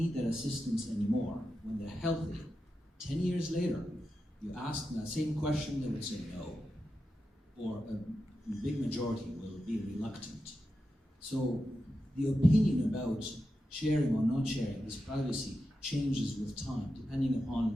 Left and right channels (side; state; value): both; normal; correlation 0.89